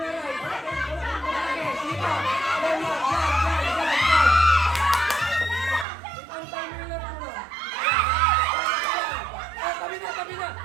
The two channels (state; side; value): drops out; left; at 5.9 s